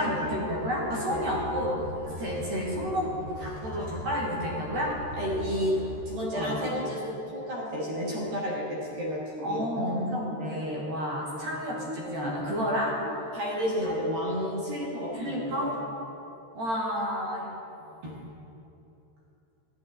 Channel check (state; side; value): late; left; 13 ms